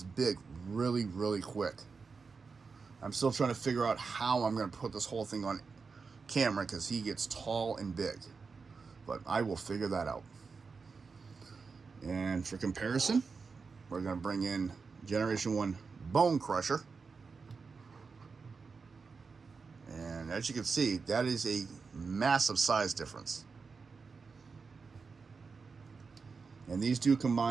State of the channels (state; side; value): quieter; left; 4.9 dB